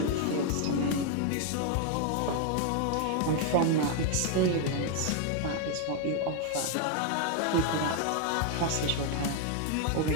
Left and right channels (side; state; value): both; different; correlation 0.01